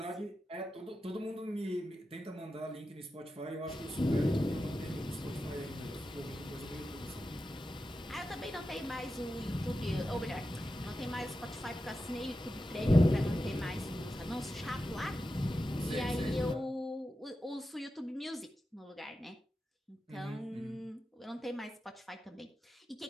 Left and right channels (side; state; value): both; normal; correlation 0.91